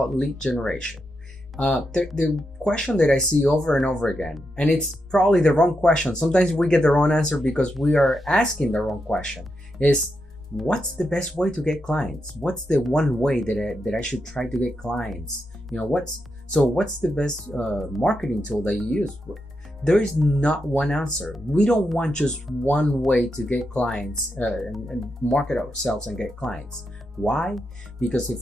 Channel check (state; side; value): normal; both; correlation 0.85